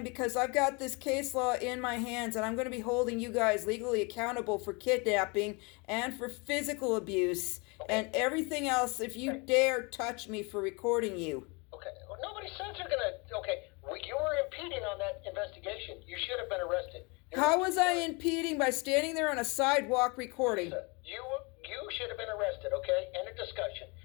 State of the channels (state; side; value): quieter; right; 29.7 dB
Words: because I've got this case law in my hands and I'm going to be holding you guys legally accountable for kidnapping and for physical abuse and everything else if you dare touch me for recording you. Okay, well, nobody says you're gonna... Okay, we you were impeding on that investigation. You should have been arrested. How was I impeding by standing there on a sidewalk recording? You should have been arrested, okay? End of discussion.